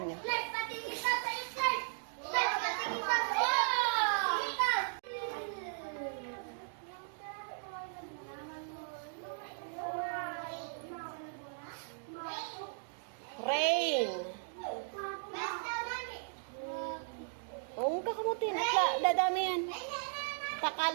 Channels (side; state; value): left; silent; digital silence